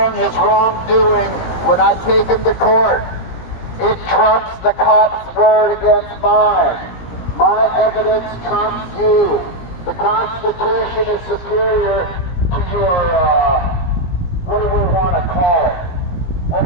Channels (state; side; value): late; right; 17 ms